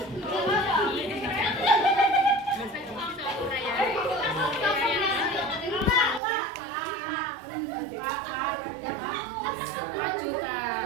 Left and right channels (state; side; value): drops out; left; at 6.2 s